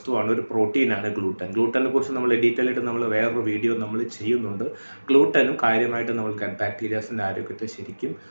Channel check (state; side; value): inverted; both; correlation -1.00